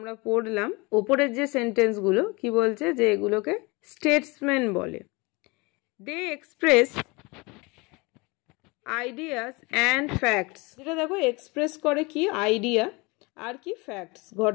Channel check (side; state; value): right; quieter; 26.2 dB